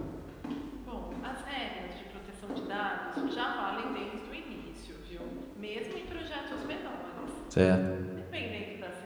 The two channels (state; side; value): identical; both; correlation 1.00